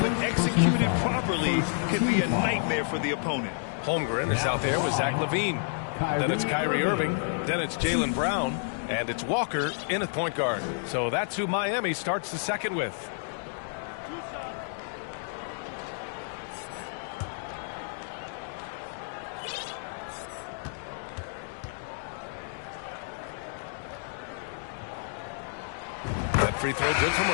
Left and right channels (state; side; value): silent; right; digital silence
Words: when executed properly, can be a nightmare for the opponent. Holmgren is out there with Zach LaVine. Then it's Kyrie Irving. Then it's Jaylen Brown. And it's Walker in at point guard. So that's who Miami starts the second with. That free throw good from